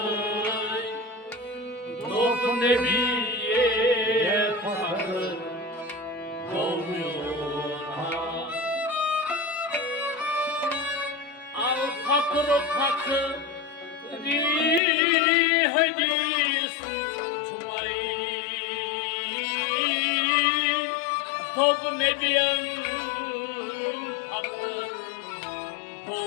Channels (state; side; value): drops out; right; at 14.8 s